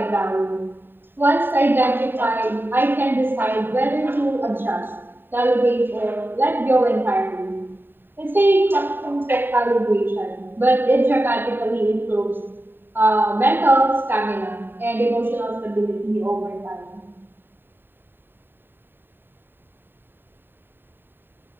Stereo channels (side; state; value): left; late; 0.096 ms